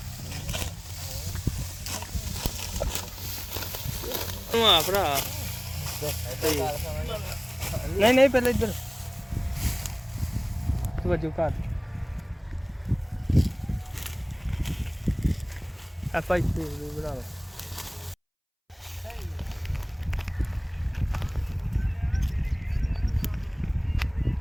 ਆ ਭਰਾ ਨਹੀਂ ਨਹੀਂ ਪਹਿਲੇ ਇੱਧਰ ਵਜੂ ਘਰ ਆਪਾਂ ਇੱਥੇ ਬਣਾ ਲਓ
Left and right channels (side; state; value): both; identical; correlation 1.00